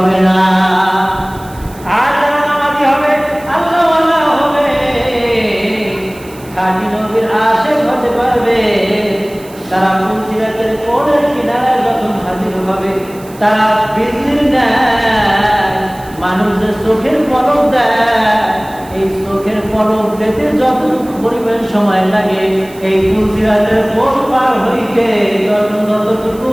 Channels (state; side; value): noise; right; hiss, 22 dB below the sound